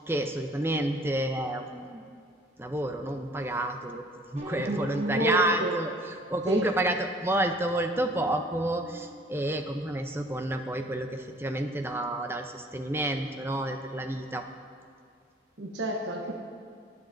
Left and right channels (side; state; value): both; normal; correlation 0.54